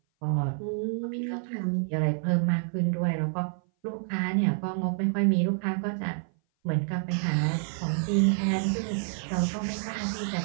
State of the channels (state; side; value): silent; left; 57 dB below the other